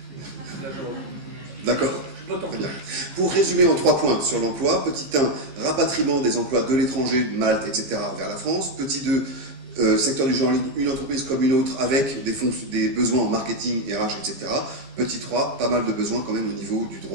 D'accord. Très bien. Pour résumer en 3 points sur l'emploi, petit 1, rapatriement des emplois de l'étranger, de Malte, etc. vers la France. Petit 2, secteur du genre, une entreprise comme une autre avec des besoins en marketing, RH, etc. Petit 3, pas mal de besoins quand même au niveau du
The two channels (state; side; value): late; left; 15 ms